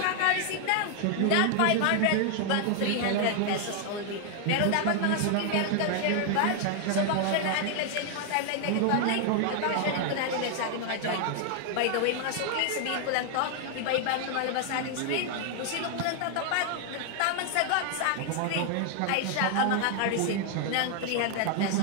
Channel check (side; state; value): both; different; correlation 0.00